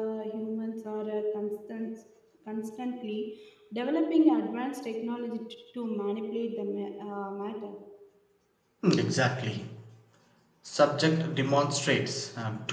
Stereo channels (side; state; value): both; identical; correlation 1.00